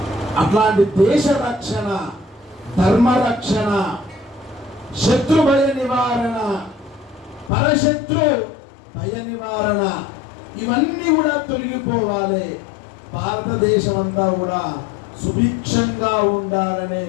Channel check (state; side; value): drops out; right; at 7.5 s